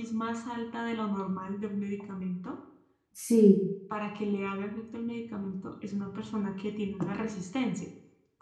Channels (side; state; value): both; identical; correlation 1.00